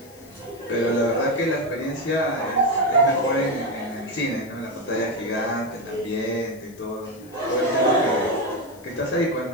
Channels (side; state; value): left; noise; hiss, 25 dB below the sound